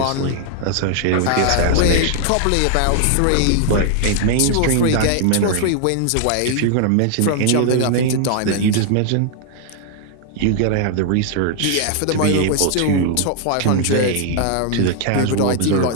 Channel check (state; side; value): different; both; correlation 0.00